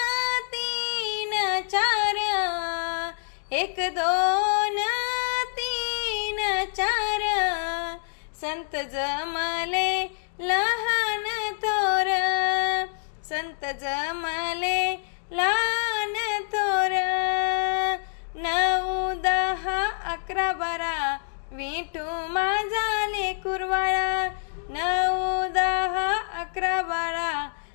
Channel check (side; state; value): right; silent; digital silence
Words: तीन चार, एक दोन तीन चार, संत जमले लहान थोर, संत जमले लहान थोर। नऊ दहा अकरा बारा, विठू माझा लेकुरवाळा, नऊ दहा अकरा बारा,